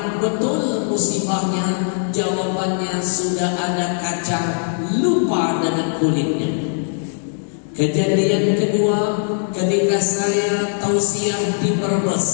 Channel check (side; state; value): right; silent; digital silence